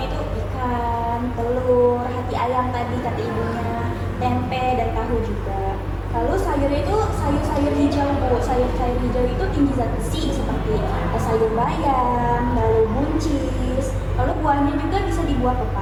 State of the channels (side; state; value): both; identical; correlation 1.00